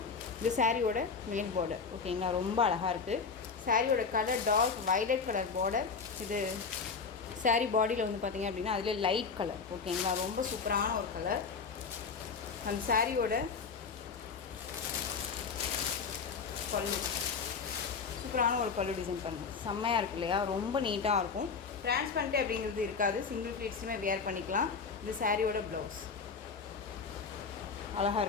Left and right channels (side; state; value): right; quieter; 5.3 dB